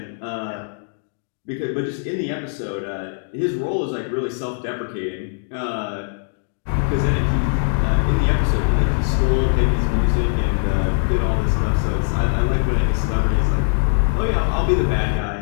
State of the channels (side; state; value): right; silent; 65 dB below the other